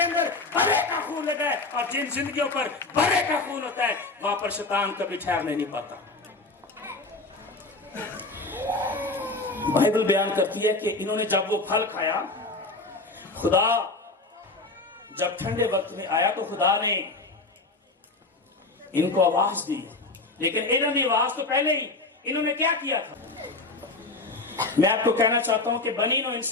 अंदर भरे का खून लगा है, और जिन जिंदगियों पर भरे का खून होता है वहां पर शैतान कभी ठहरने नहीं पाता। बाइबल बयान करती है कि इन्होंने जब वो फल खाया, खुदा जब ठंडे वक्त में आया तो खुदा ने इनको आवाज दी, लेकिन इन्होंने आवाज तो पहले ही इन्होंने क्या किया था। मैं आपको कहना चाहता हूं कि बनी नो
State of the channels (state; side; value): quieter; right; 3.3 dB